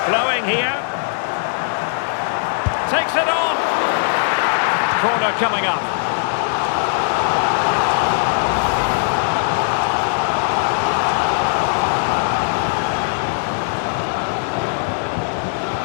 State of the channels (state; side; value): silent; right; digital silence